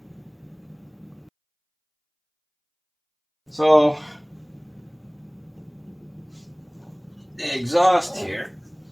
So the exhaust here,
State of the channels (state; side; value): identical; both; correlation 1.00